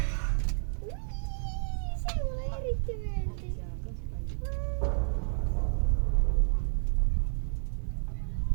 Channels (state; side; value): silent; left; digital silence